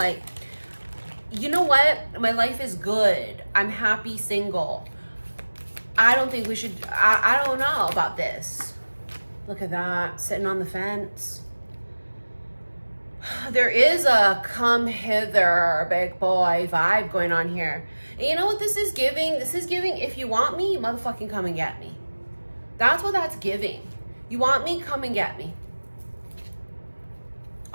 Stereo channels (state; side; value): inverted; both; correlation -1.00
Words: you know what? My life is good. I'm happy single. I don't think we should, I don't know about this. Look at that, sitting on the fence. There is a come hither, big boy vibe going on here. And you know what this is giving? This is giving, if you want me, motherfucking come and get me. That's what that's giving. You want me, come and get me.